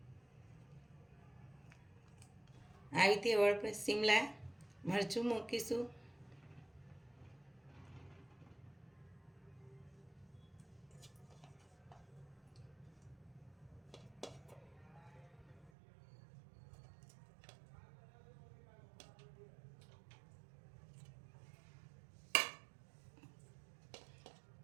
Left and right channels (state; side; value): drops out; left; at 15.7 s